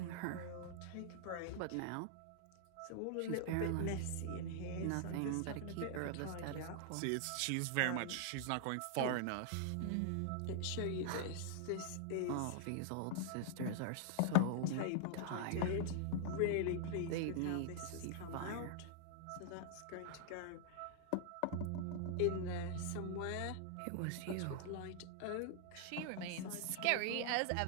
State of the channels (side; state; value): both; different; correlation -0.01